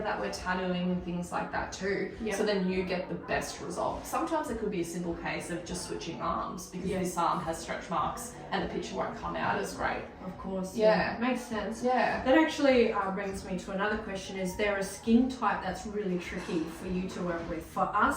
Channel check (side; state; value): both; identical; correlation 1.00